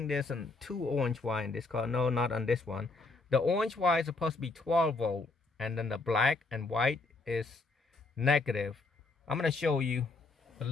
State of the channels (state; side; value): quieter; right; 3.6 dB